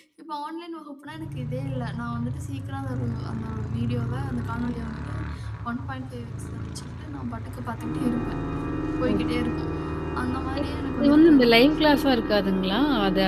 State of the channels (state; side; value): identical; both; correlation 1.00